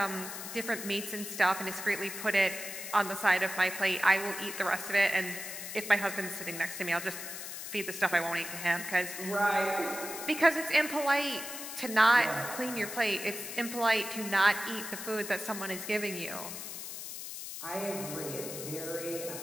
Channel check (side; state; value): left; noise; hiss, 8 dB below the sound